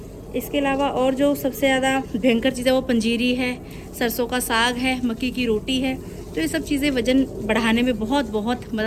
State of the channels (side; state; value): both; identical; correlation 1.00